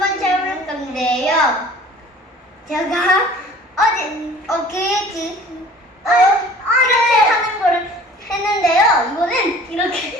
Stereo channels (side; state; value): both; normal; correlation 0.48